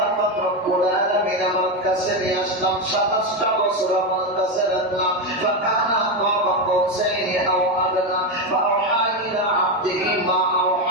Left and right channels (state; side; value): normal; both; correlation 0.11